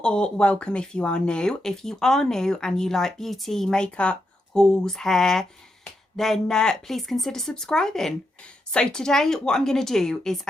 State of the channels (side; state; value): both; normal; correlation 0.84